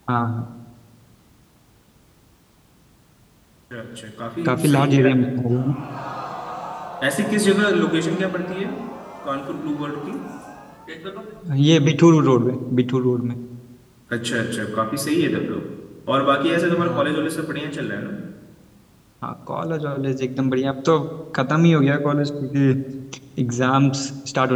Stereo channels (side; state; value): both; identical; correlation 1.00